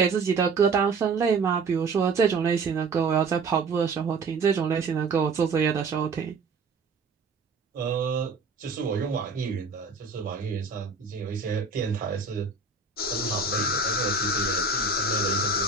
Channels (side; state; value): left; quieter; 4.2 dB